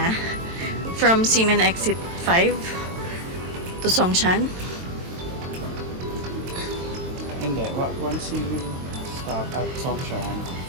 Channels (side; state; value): left; late; 22 ms